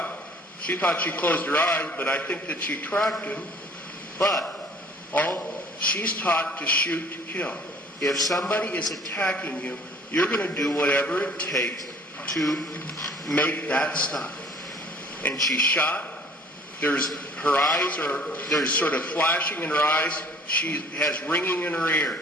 she thought she closed her eyes, but I think that she tracked him. But she's taught to shoot to kill. If somebody is attacking you, you're going to do whatever it takes to make that stop. And she shot. There's sort of flashing in her eyes. She has ringing in her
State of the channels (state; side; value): normal; both; correlation 0.53